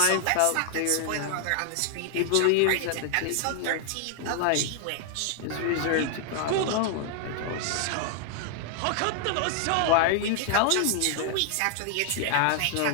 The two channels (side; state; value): both; different; correlation 0.00